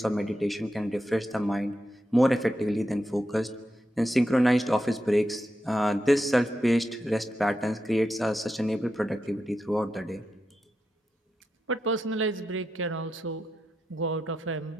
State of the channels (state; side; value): normal; both; correlation 0.87